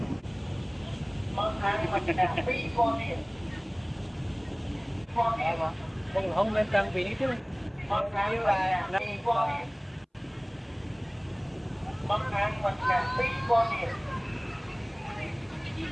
Bác ăn mà cả phi con điện. Con điện mà. Đừng không nên trang bị chứ. Bác ăn mà cả phi con điện. Bác ăn mà cả phi con điện.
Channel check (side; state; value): both; identical; correlation 1.00